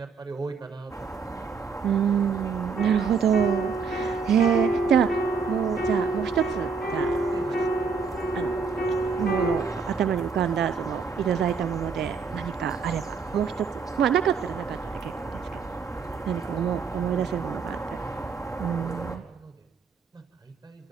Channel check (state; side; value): quieter; left; 5.5 dB